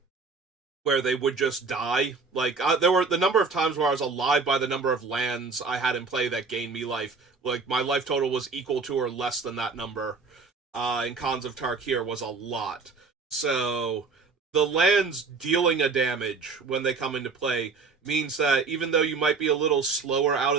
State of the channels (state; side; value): quieter; left; 4.5 dB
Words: where they would just die. Like, there were the number of times where I was alive by the number of lands I had in play that gained me life. Like, my life total was equal to or less than that number. In Khans of Tarkir was a lot. So the lands dealing a damage when they come into play means that even though you might be a little slower out